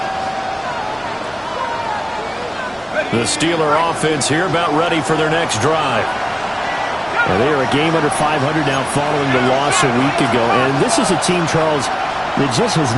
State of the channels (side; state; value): both; identical; correlation 1.00